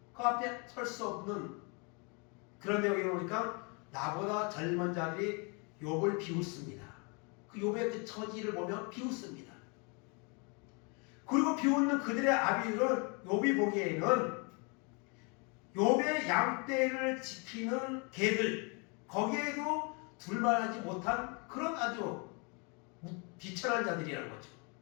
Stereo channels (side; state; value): right; quieter; 33.1 dB